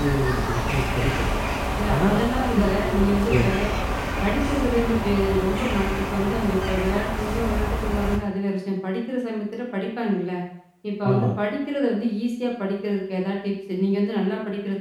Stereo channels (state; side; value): identical; both; correlation 1.00